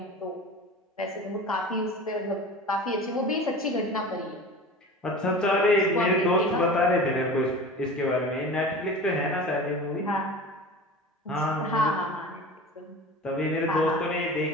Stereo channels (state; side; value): normal; both; correlation 0.35